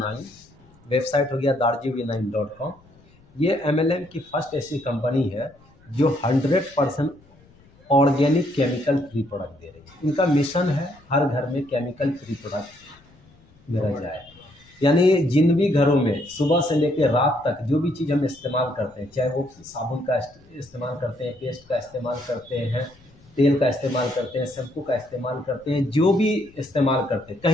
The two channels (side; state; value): left; noise; rumble, 28 dB below the sound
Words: वेबसाइट हो गया darjuv9.com। ये MLM की फर्स्ट ऐसी कंपनी है जो 100% ऑर्गेनिक केमिकल फ्री प्रोडक्ट दे रही है। इनका मिशन है हर घर में केमिकल फ्री प्रोडक्ट मेरा जाए। यानी जिन भी घरों में सुबह से लेकर रात तक जो भी चीज़ हम इस्तेमाल करते हैं, चाहे वो साबुन का इस्तेमाल करते हैं, पेस्ट का इस्तेमाल करते हैं, तेल का इस्तेमाल करते हैं, शैम्पू का इस्तेमाल करते हैं, जो भी इस्तेमाल करते हैं,